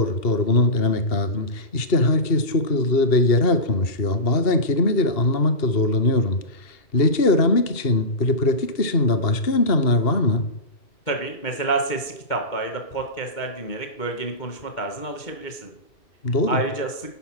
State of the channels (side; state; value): right; late; 2.2 ms